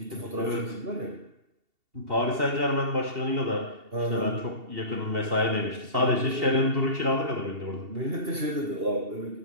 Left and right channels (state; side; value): late; left; 2.7 ms